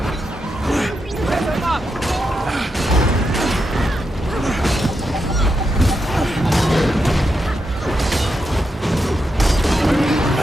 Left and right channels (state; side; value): normal; both; correlation 0.85